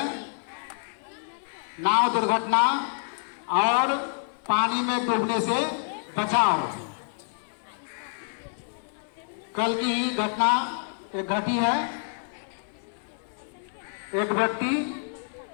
नाव दुर्घटना और पानी में डूबने से बचाव। कल की ही घटना एक घटी है। एक व्यक्ति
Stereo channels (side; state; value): right; silent; 60 dB below the other